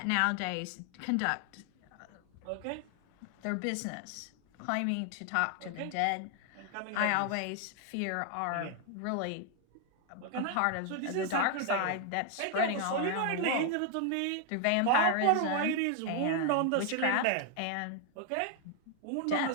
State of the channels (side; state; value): both; different; correlation 0.00